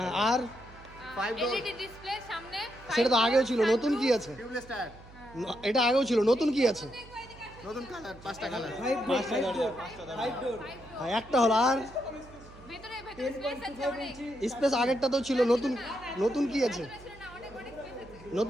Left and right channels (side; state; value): right; noise; hum, 20 dB below the sound